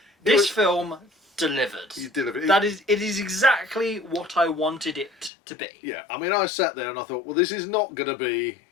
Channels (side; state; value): right; drops out; at 5.3 s